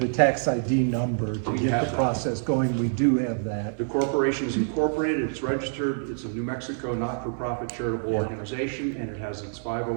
tax ID number to We get have the that. process going, we do have that. The corporation is incorporated, it's registered, it's a New Mexico not-for-profit charitable organization, and it has its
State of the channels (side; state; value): left; silent; 59 dB below the other